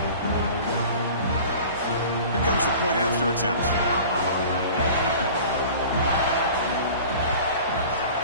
Here comes the point after attempt.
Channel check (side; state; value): both; inverted; correlation -0.42